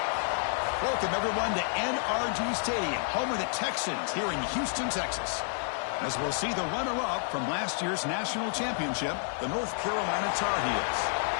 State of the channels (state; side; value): silent; right; 58 dB below the other